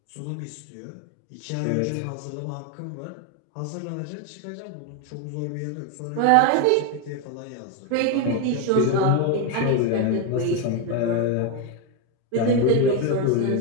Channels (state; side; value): different; both; correlation 0.02